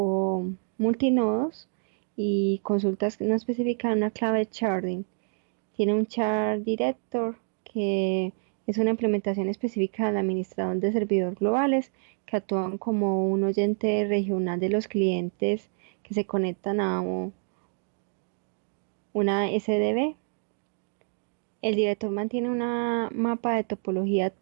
multinodos y consultas que no especifican una clave de sharding. Tiene un char director que es una implementación específica del administrador de servidores globales que actúan como un oyente regional de los clientes que se conectan a una SDB. El director mantiene una mapa de topología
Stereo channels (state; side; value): silent; left; 60 dB below the other